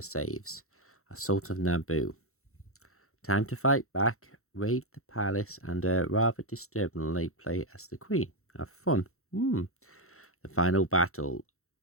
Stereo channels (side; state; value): right; late; 0.63 ms